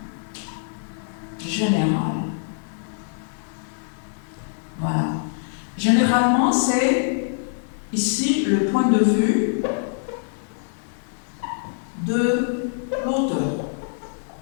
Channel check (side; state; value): right; silent; digital silence